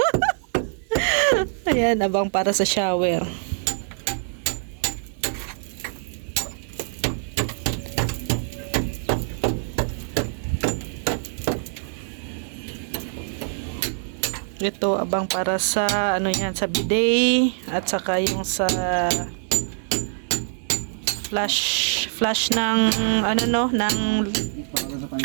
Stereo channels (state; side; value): silent; left; 62 dB below the other